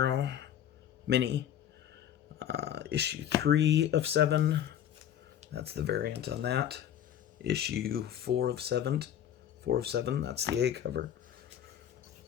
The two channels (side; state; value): right; quieter; 10.2 dB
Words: mini. Issue 3 of 7. That's the variant on that. Issue 4 of 7. 4 of 7. That's the A cover.